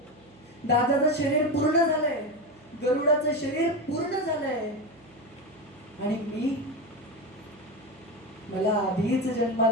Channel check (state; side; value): noise; right; hum, 28 dB below the sound